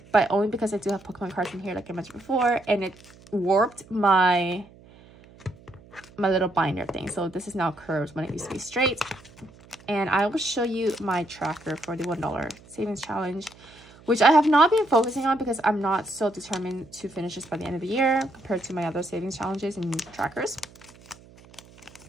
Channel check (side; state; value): right; noise; hum, 24 dB below the sound